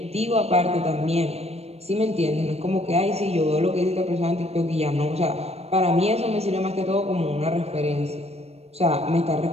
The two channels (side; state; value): left; late; 0.30 ms